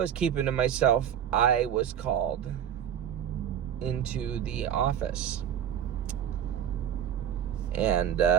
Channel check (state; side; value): quieter; left; 9.5 dB